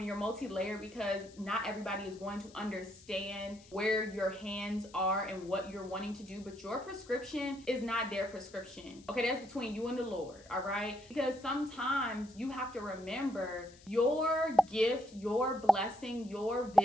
you're multi-layered because not everybody is going to understand understand where your hands are and what you're wanting to do, but your prescription is not their prescription. Okay, that's between you and the Lord, all right? Because sometimes you have to remember your gift, your blessing, your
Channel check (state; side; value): noise; left; hiss, 24 dB below the sound